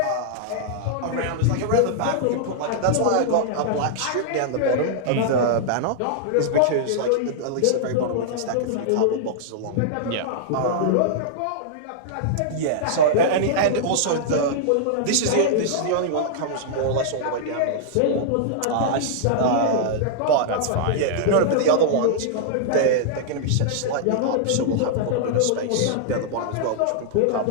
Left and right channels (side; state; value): both; different; correlation -0.01